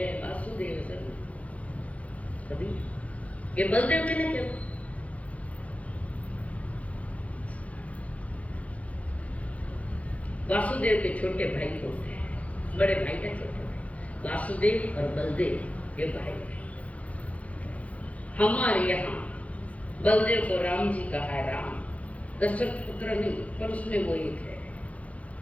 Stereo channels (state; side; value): late; right; 0.066 ms